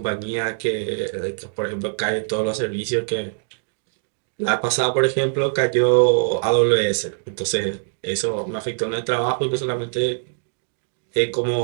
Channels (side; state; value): left; silent; digital silence